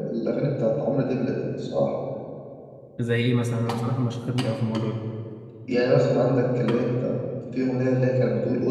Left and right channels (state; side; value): identical; both; correlation 1.00